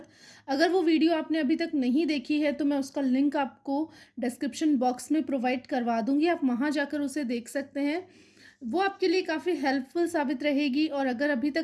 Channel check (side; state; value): both; identical; correlation 1.00